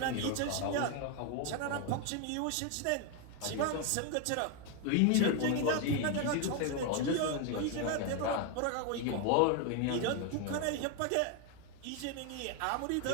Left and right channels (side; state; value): both; different; correlation 0.01